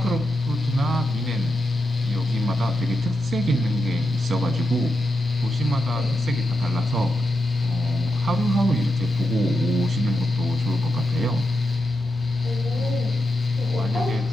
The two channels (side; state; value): both; normal; correlation 0.86